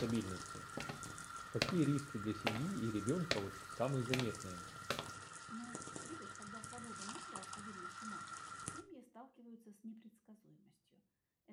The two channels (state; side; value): identical; both; correlation 1.00